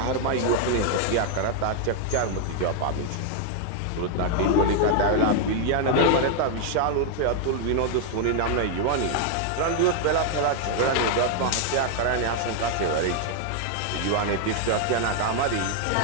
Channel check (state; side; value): different; both; correlation 0.00